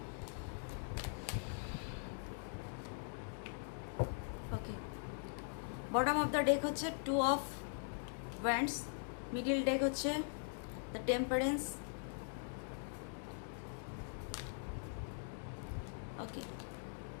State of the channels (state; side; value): silent; right; digital silence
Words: Okay, bottom of the day হচ্ছে 2 অফ ওয়ান্ডস, মিডিল ডেক হচ্ছে দ্য টেম্পারেন্স। ওকে,